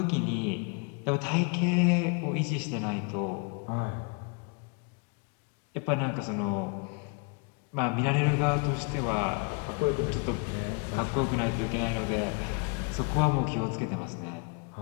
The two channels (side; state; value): right; quieter; 35.2 dB